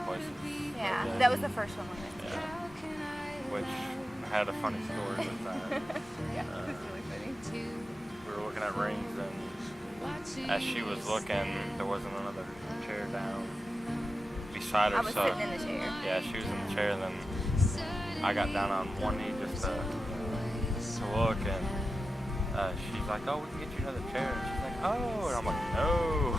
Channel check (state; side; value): normal; both; correlation 0.91